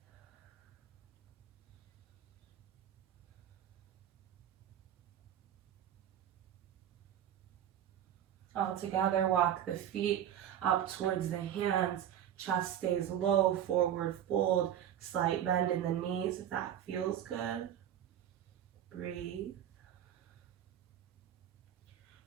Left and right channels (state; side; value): quieter; left; 10.4 dB